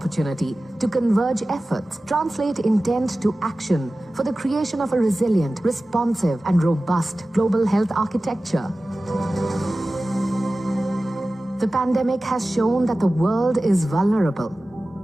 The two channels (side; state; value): both; normal; correlation 0.96